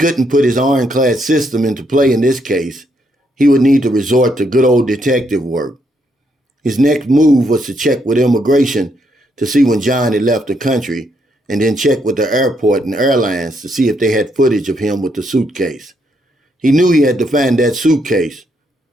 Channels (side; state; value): both; normal; correlation 0.75